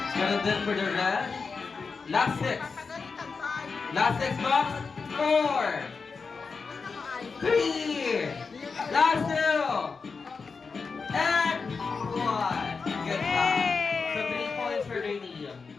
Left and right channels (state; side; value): quieter; right; 4.9 dB